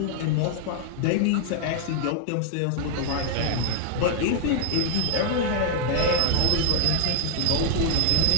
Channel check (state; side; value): different; both; correlation 0.00